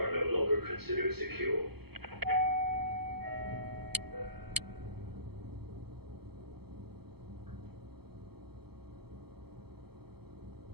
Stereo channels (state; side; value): late; left; 0.96 ms